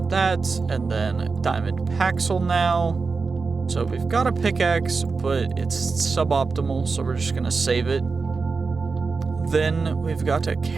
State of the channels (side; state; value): left; quieter; 4.5 dB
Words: that, and then diamond paxel now. So we've got a pickaxe, but it's suboptimal, so we're just gonna save it. Then we've got a